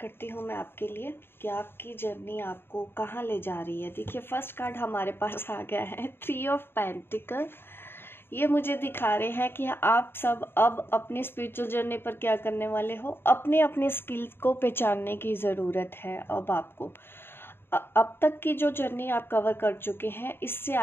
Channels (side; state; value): right; late; 0.11 ms